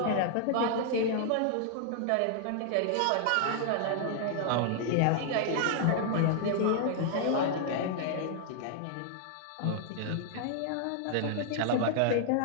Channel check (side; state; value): both; different; correlation -0.01